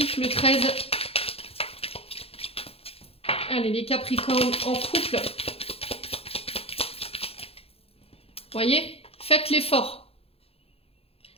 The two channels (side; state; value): right; late; 0.28 ms